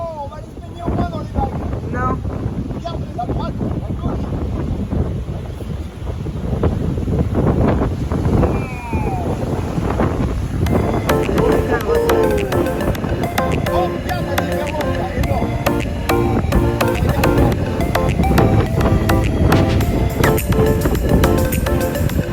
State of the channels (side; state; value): both; identical; correlation 1.00